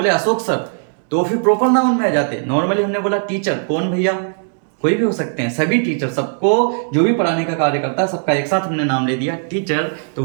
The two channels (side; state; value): left; silent; digital silence